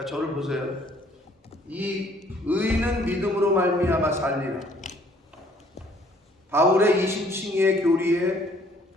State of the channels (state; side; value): normal; both; correlation 0.60